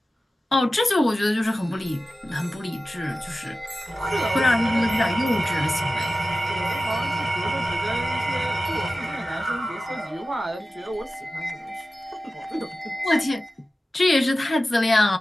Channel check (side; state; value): both; normal; correlation 0.94